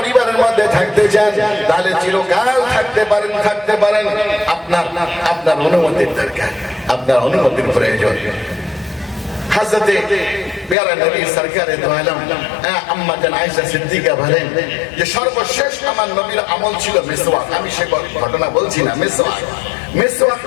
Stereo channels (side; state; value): right; drops out; at 10.8 s